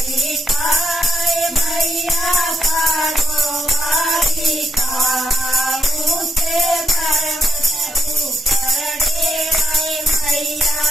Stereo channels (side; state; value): both; normal; correlation 0.79